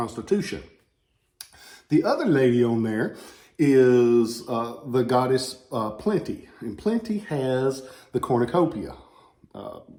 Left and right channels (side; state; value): both; identical; correlation 1.00